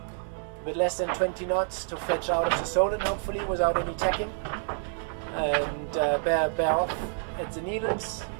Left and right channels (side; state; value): left; silent; 59 dB below the other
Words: bit less than 20 knots to fetch out of the Solent, hopefully without any tacking, and bear off at the Needles